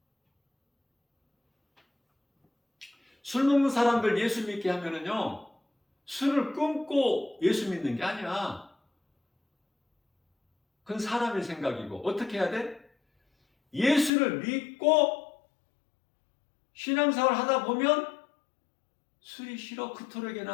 술 먹는 사람들 예수 믿게 하면은요, 술을 끊고 예수 믿는 게 아니야. 그건 사람의 생각이고, 어떻게 해야 돼? 예수를 믿고 신앙생활 하다 보면 술이 싫어.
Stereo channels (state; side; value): drops out; right; at 14.1 s